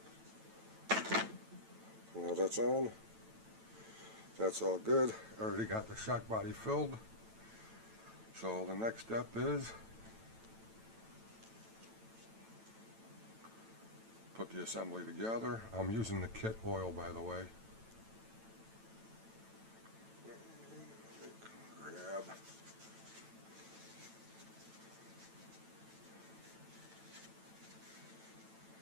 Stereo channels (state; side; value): late; left; 9.0 ms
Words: Now that's on. That's all good. I already got the shock body filled. So the next step is put the assembly together. I'm using the kit oil, by the way. Grab.